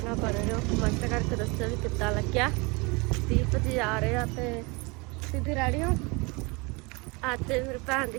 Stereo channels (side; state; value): left; quieter; 27.9 dB